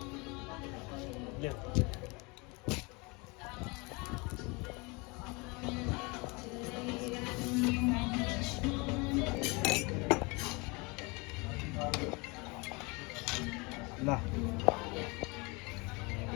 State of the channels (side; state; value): right; quieter; 27.6 dB